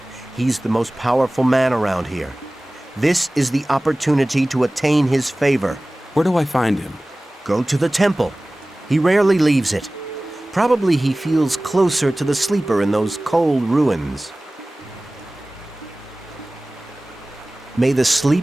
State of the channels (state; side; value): normal; both; correlation 0.98